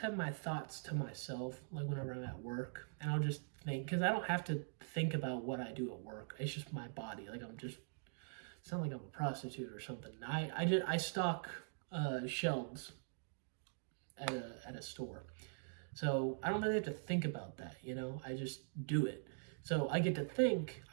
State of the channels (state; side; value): silent; left; digital silence